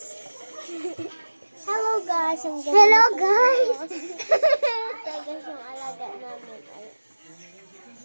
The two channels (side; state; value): both; inverted; correlation -1.00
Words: Hello guys! Hello guys! Ito guys yung alaga namin.